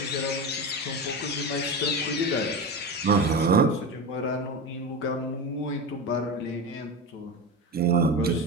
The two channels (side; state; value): both; normal; correlation 0.22